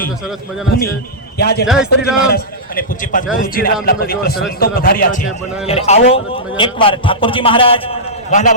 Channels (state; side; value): normal; both; correlation -0.14